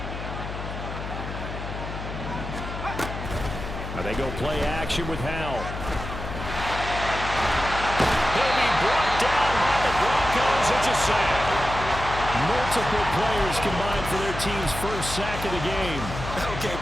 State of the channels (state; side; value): noise; left; hum, 7 dB below the sound